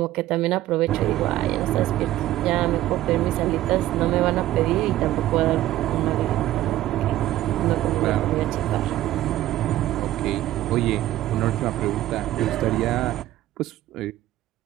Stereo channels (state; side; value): quieter; left; 14.5 dB